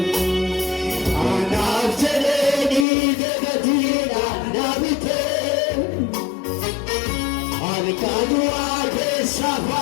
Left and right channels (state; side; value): drops out; right; at 2.9 s